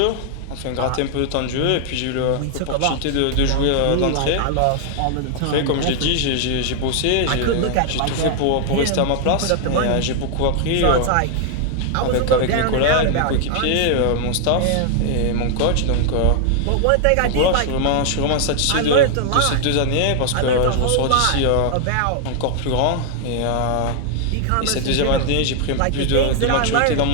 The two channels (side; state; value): both; different; correlation 0.00